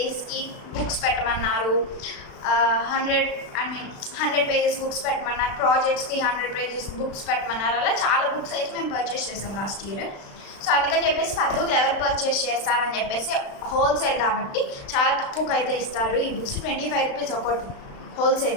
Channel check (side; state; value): right; late; 36 ms